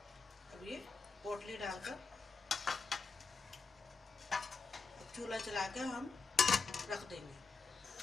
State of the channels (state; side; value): quieter; right; 4.5 dB